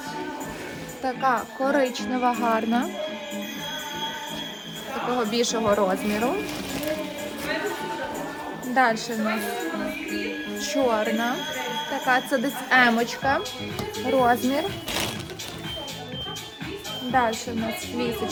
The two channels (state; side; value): identical; both; correlation 1.00